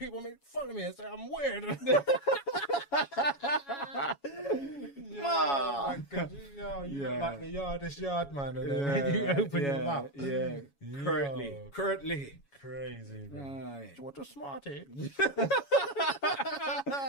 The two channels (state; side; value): late; right; 7.2 ms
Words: make fun of me and say I'm weird. Yeah, you look like the yardest yard man, and then when you open your mouth, currently, crazy, man. right. What a Smartie!